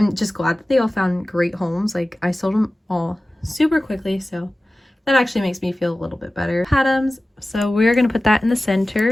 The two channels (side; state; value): both; normal; correlation 0.96